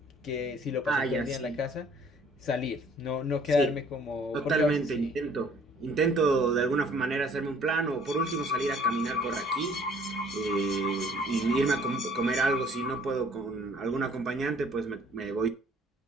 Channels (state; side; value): normal; both; correlation 0.57